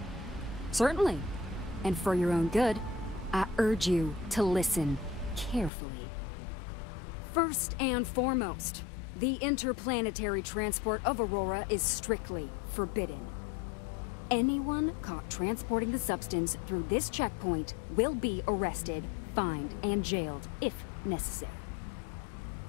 Certainly. And for your own good, I urge you to listen carefully. First and foremost, the interplanetary transport of Aurora is strictly forbidden. Anyone caught transporting the substance through this checkpoint will be arrested, fined, and jailed if necessary.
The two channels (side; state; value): right; drops out; at 5.7 s